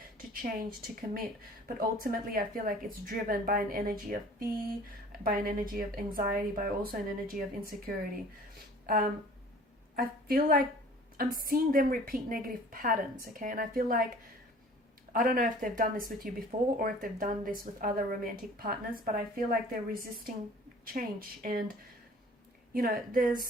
to change, to commit. But ultimately, I feel like it's driven by an energy of fear, by an energy of anxiety, by also an energy of insecurity. I feel like I'm seeing them repeat negative patterns, okay? And I feel like, I don't know if they've done this with you before or if they've done this with other romantic partners, but I feel like they're resisting change. And, you know,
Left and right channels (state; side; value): normal; both; correlation 0.48